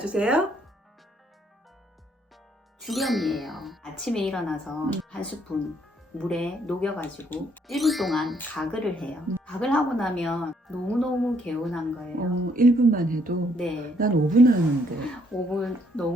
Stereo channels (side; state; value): both; normal; correlation 0.69